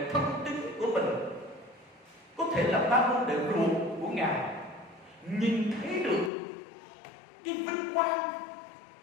thân tín của mình, có thể là 3 môn đệ ruột của Ngài, nhìn thấy được cái vinh quang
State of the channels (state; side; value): drops out; right; at 6.3 s